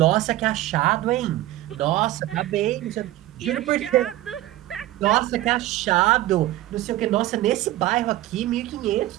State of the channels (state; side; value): quieter; left; 15.8 dB